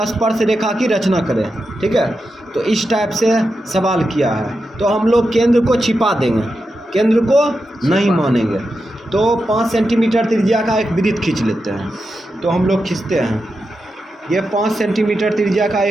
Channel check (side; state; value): both; normal; correlation 0.89